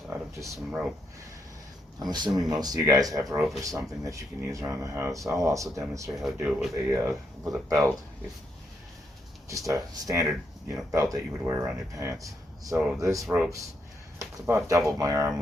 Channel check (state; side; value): normal; both; correlation 0.79